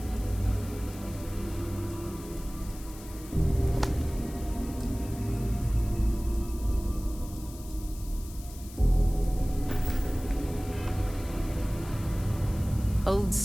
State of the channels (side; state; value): left; noise; hiss, 18 dB below the sound